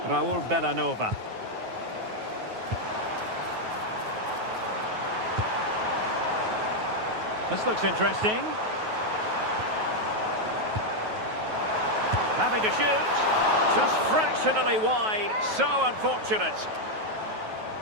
Raul Bellanova. This looks interesting. Having to shoot. Just fractionally wide. So unfortunate.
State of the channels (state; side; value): late; left; 9.3 ms